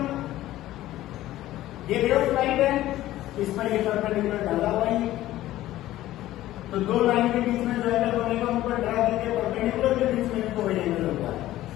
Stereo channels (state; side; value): quieter; right; 14.9 dB